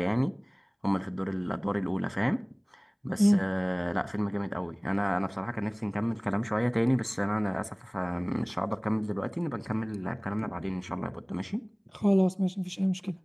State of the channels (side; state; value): both; identical; correlation 1.00